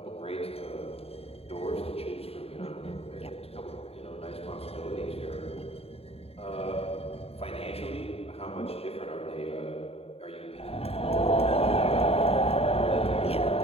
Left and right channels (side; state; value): right; late; 0.29 ms